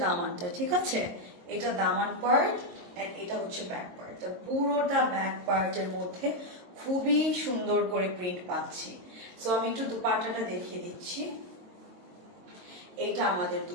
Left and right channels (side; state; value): left; late; 22 ms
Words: দামানটা, ঠিক আছে? এটা দামান পার্ট এন্ড এটা হচ্ছে ব্যাক পার্ট। পুরোটা ব্যাক পার্টের মধ্যে খুবই সুন্দর করে প্রিন্ট পাচ্ছি। সো আমি একটু দুপাট্টাটা দেখিয়ে দিচ্ছি। এইটা আমাদের